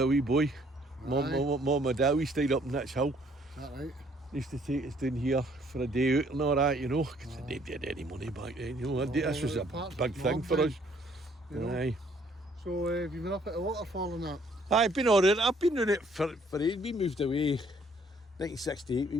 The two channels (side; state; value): both; normal; correlation 0.63